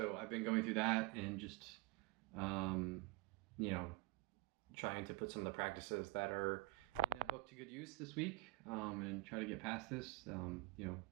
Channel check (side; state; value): left; quieter; 24.2 dB